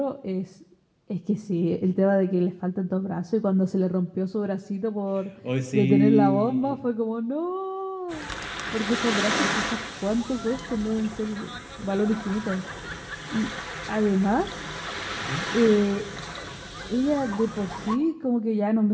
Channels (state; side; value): identical; both; correlation 1.00